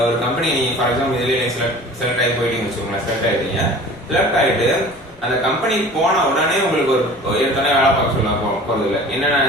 ஒரு கம்பெனி ஃபார் எக்ஸாம்பிள் இதுலேயே செலக்ட் ஆகி போயிட்டீங்கன்னு வச்சுக்கோங்களேன். செலக்ட் ஆகிட்டீங்க, செலக்ட் ஆகிட்டு அந்த கம்பெனி போன உடனே உங்களுக்கு ஒரு ஏற்கனவே வேலை பார்க்க சொல்ல போகிறது இல்லை.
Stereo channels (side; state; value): left; noise; rumble, 27 dB below the sound